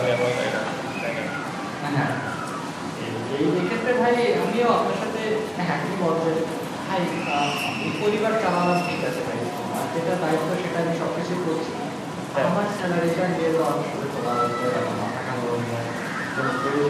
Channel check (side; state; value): both; identical; correlation 1.00